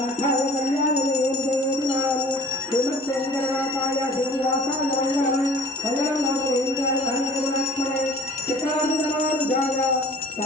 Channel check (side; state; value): both; normal; correlation 0.47